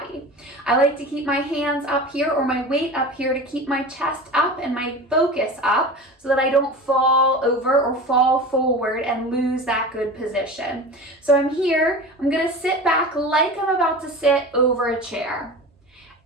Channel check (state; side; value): normal; both; correlation 0.32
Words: I like to keep my hands up here or my weight up here to keep my chest up and my focus up so that I don't fall over or fall forward and lose that good position. So I'm here. I'm going to sit back like I'm about to sit over a chair